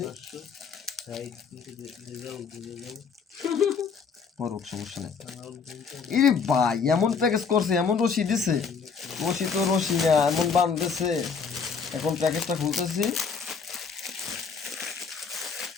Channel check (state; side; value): quieter; right; 5.7 dB